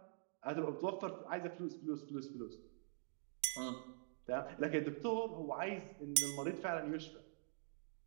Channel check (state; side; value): silent; left; digital silence